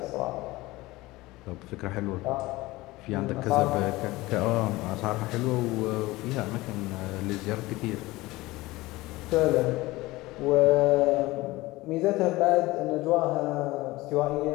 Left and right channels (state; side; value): quieter; right; 19.8 dB